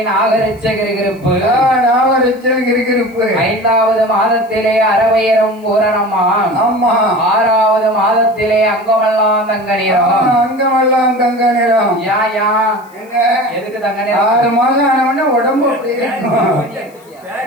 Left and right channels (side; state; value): left; noise; hiss, 30 dB below the sound